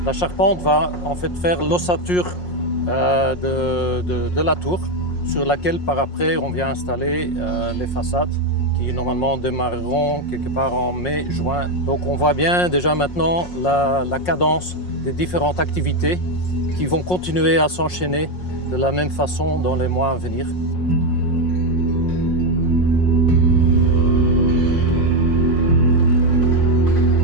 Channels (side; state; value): right; late; 5.5 ms